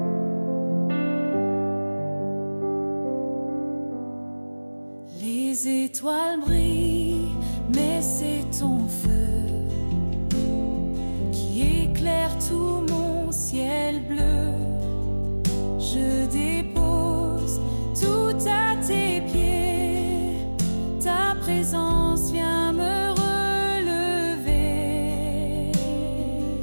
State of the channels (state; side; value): inverted; both; correlation -1.00